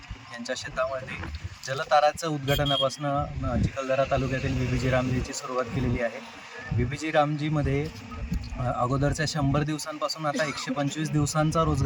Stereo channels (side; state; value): both; identical; correlation 1.00